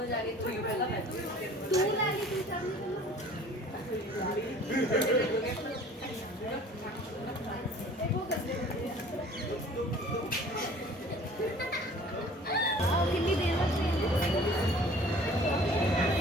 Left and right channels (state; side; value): normal; both; correlation 0.49